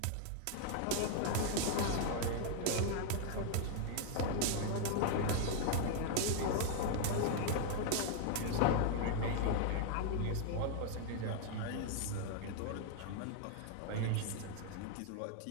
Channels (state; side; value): different; both; correlation 0.00